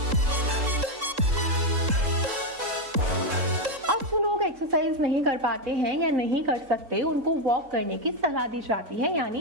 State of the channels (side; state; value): left; late; 3.7 ms